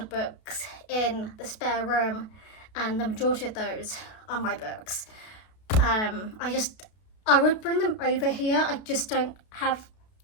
of books in the spare room, and the majority of those are my books. I would bring them over here, I just don't have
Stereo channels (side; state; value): right; late; 32 ms